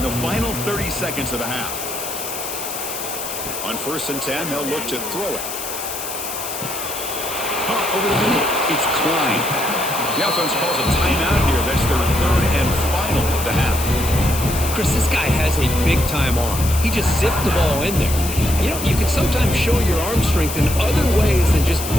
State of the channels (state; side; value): noise; left; hiss, 7 dB below the sound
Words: the final 30 seconds of the half? On 1st and 10, they'll look to throw it. Caught over the middle. It's Klein. The offense calls a timeout here. That's their 3rd and final of the half. Chris, this guy has a big-time arm. He just zipped the ball in there. You know, you can sometimes show your arm strength in other ways than just